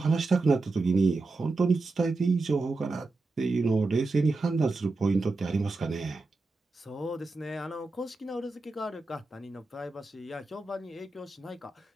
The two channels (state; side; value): quieter; left; 3.4 dB